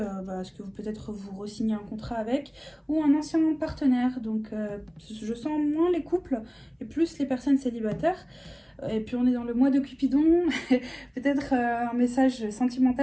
à ce que vous peut-être vous re-signez un contrat avec ou un ancien partenaire. Donc je sens moins les couples et plus les personnes célibataires. Et puis on est dans le mois de Cupidon, peut-être un message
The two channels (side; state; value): both; identical; correlation 1.00